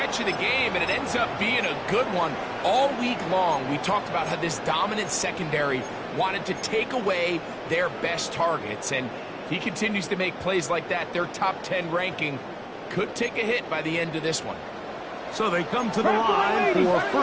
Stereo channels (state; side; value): identical; both; correlation 1.00